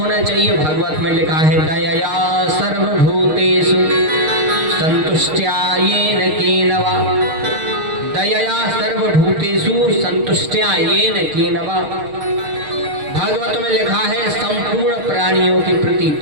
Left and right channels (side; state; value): left; late; 6.5 ms